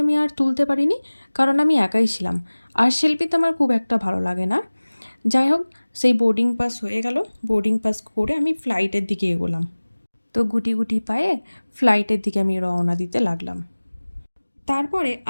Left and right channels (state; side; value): inverted; both; correlation -1.00